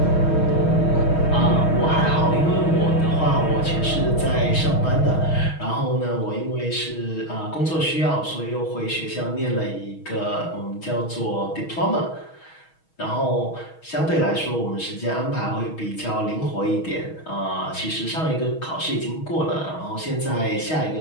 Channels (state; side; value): late; right; 6.3 ms